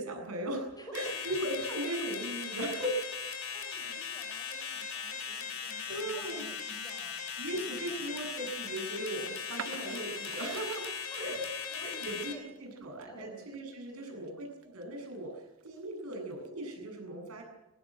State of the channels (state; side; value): normal; both; correlation -0.03